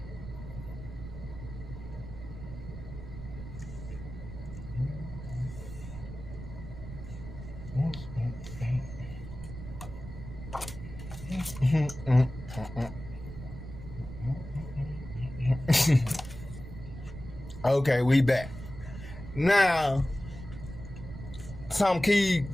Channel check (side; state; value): right; noise; rumble, 11 dB below the sound